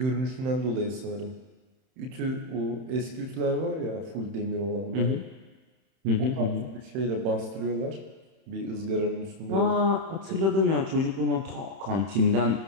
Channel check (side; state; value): left; late; 31 ms